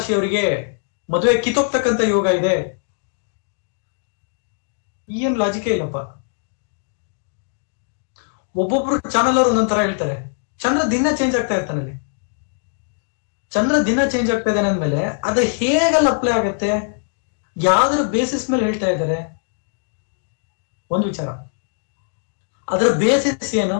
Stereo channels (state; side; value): silent; right; digital silence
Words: ಮದುವೆ ಕಿತ್ತೋಗ್ತಕ್ಕಂತ ಯೋಗ ಇದೆ. ಏನ್ ಲಾಜಿಕೇ ಇಲ್ಲಪ್ಪ. ಒಬ್ಬೊಬ್ರು ಚಾನಲ್ ಅವರು ಒಂದೊಂದರ ಹೇಳ್ತಾರೆ. ಚಂದ್ರ ದಿನ ಚೇಂಜ್ ಆಗ್ತಾ ಇರ್ತಾನೆ. ಅಲ್ಲಿ ಚಂದ್ರ ದಿನ ಚೇಂಜ್ ಆಗ್ತಾ ಇದ್ದಾನೆ ಅಂದ್ಮೇಲೆ ಅದು ಹೇಗಲ್ಲ ಅಪ್ಲೈ ಆಗತ್ತೆ, ಯಾವ್ದ್ರ ಬೇಸಿಸ್ ಮೇಲೆ ಹೇಳ್ತಾ ಇದ್ದಾರೆ? ಒಂದು ವಿಚಾರ, ಅದರ ಬೇಸಿಸ್ ಏನು?